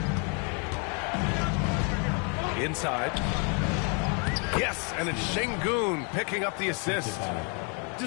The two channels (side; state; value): right; quieter; 36.5 dB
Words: Inside. Yes, and it's Şengün picking up the assist.